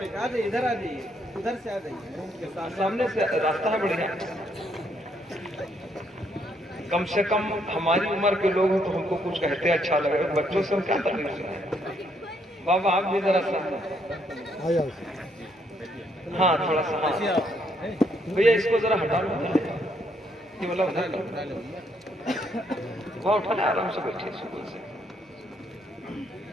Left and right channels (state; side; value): normal; both; correlation 0.72